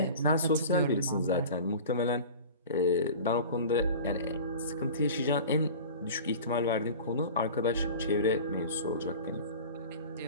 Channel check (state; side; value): inverted; both; correlation -0.37